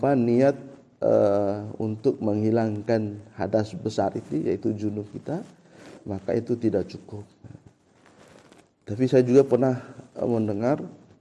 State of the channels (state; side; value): identical; both; correlation 1.00